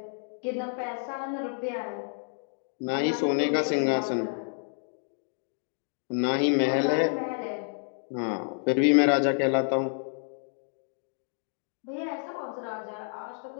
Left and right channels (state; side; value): silent; right; 58 dB below the other